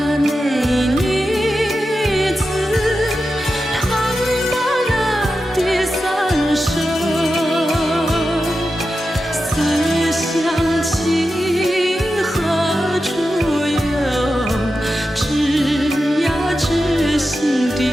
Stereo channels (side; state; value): both; normal; correlation 0.91